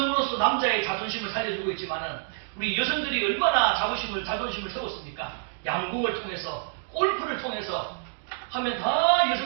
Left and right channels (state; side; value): silent; left; digital silence